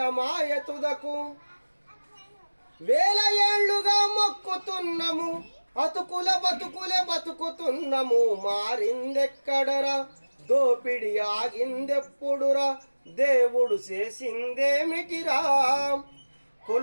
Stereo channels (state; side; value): inverted; both; correlation -1.00